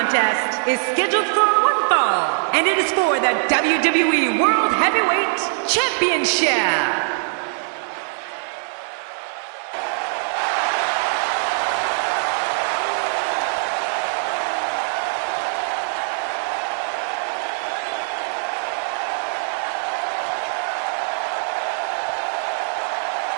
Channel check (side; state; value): left; silent; digital silence